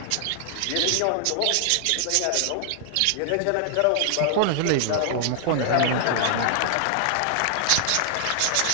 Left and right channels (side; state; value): both; different; correlation 0.00